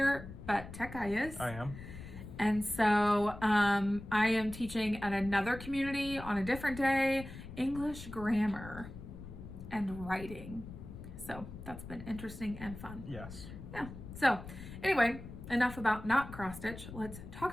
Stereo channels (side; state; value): left; noise; rumble, 12 dB below the sound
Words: but Tech Guy is. I am. And so I am teaching at another community on a different day, English grammar and writing. So that's been interesting and fun. Yes. Yeah. So anyway, enough about not cross stitch. Let's talk